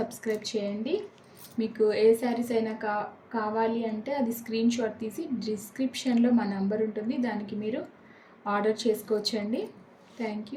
చేయండి. మీకు ఏ శారీస్ అయినా కావాలి అంటే అది స్క్రీన్ షాట్ తీసి డిస్క్రిప్షన్లో మా నంబర్ ఉంటుంది, దానికి మీరు ఆర్డర్ చేసుకోవచ్చండి.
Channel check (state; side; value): identical; both; correlation 1.00